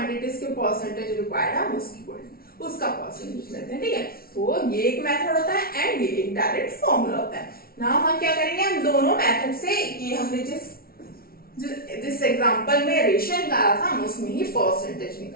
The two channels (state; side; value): late; right; 0.44 ms